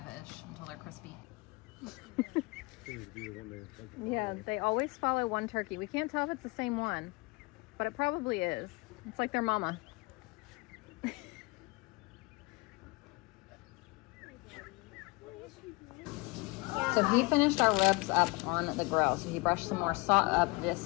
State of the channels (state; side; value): quieter; right; 25.9 dB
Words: until they're crispy. Yeah, they always follow one turkey. We can't tell if it's the same one, but it probably is. It's like their mama. So he finished our ribs up on the grill. So he brushed some more